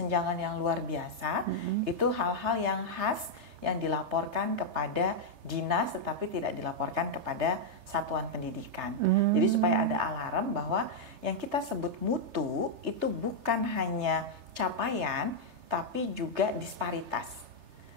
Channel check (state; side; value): late; left; 3.3 ms